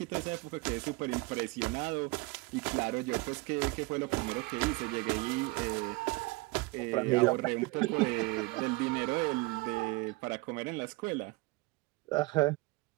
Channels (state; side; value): quieter; left; 23.9 dB